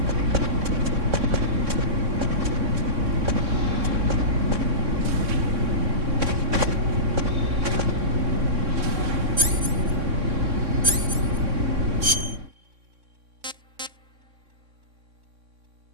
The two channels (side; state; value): left; late; 3.6 ms